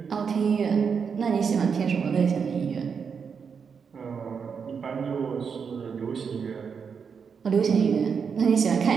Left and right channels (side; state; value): left; quieter; 6.2 dB